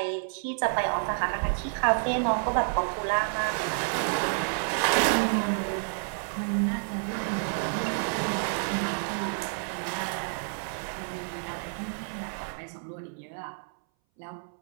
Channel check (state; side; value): silent; left; 58 dB below the other